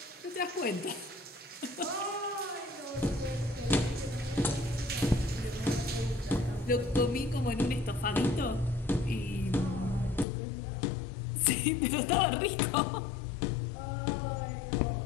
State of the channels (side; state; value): right; drops out; at 10.2 s